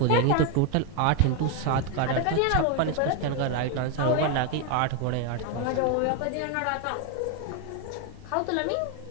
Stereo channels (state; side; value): different; both; correlation 0.01